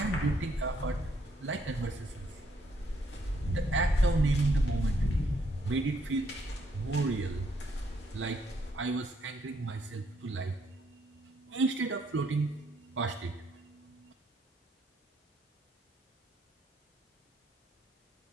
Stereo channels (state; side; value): normal; both; correlation 0.71